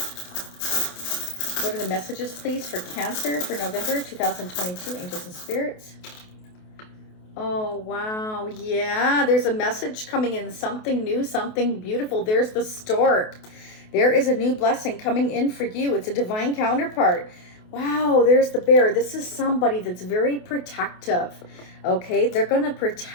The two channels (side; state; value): right; late; 28 ms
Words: What are the messages, please, for Cancer for November 2022, angels and spirits? Oh, wow. Yeah, there's a message coming in, something new, something beautiful. There's the stork. There is a new blessing coming in for you. It's a divine counterpart. Wow, there's the bear. This is somebody that's very protective. Okay, they're going to